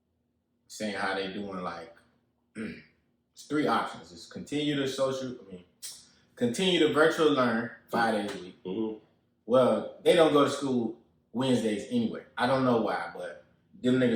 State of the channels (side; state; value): both; identical; correlation 1.00